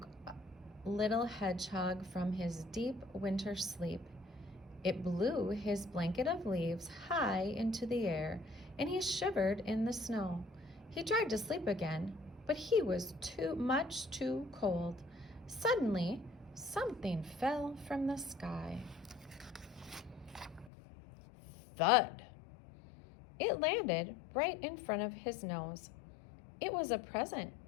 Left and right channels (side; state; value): right; drops out; at 20.7 s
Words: little hedgehog from his deep winter sleep. It blew his blanket of leaves high into the air, and he shivered in the snow. He tried to sleep again, but he was too cold. Suddenly, something fell from the sky. Thud! It landed right in front of his nose. It was a present,